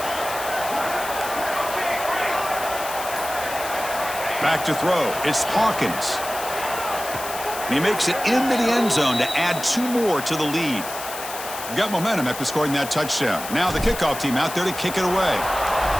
Back to throw. It's Hawkins. And he makes it into the end zone to add 2 more to the lead. Got momentum after scoring that touchdown. Now the kickoff team out there to kick it away.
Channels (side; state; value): left; noise; hiss, 10 dB below the sound